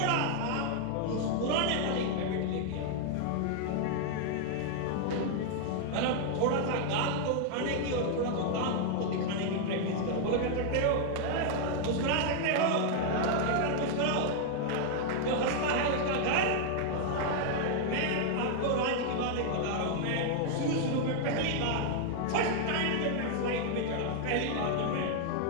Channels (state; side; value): different; both; correlation 0.00